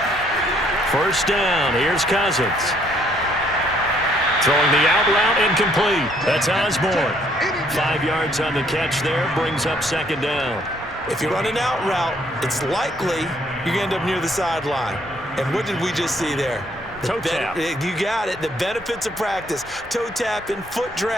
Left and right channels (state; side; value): normal; both; correlation 0.66